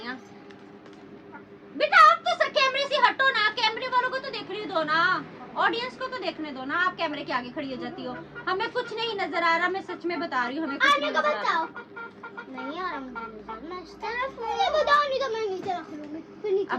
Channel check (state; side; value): identical; both; correlation 1.00